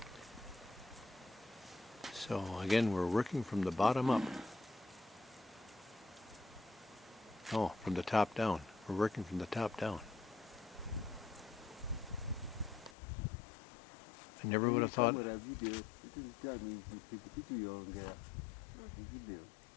So again, we're working from the bottom up. Oh, from the top down. We're working from the top down. I never would have thought. Camera video, it will tell me video video.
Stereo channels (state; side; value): drops out; right; at 13.0 s